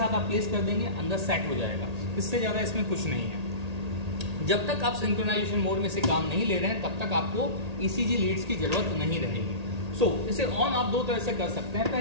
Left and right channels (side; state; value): left; late; 1.8 ms